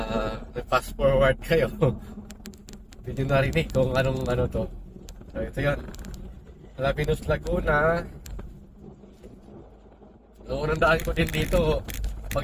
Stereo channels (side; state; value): both; identical; correlation 1.00